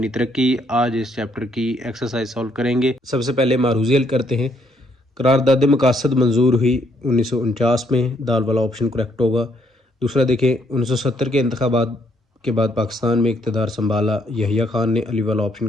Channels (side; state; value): both; normal; correlation 0.71